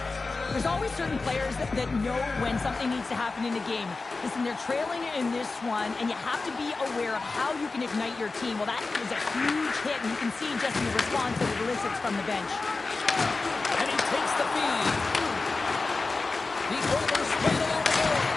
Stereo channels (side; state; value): right; quieter; 3.8 dB